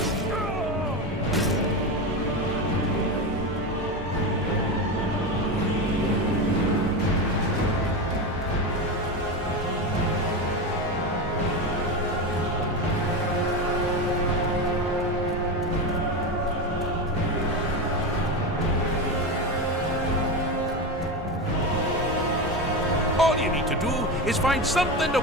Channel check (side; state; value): both; normal; correlation 0.18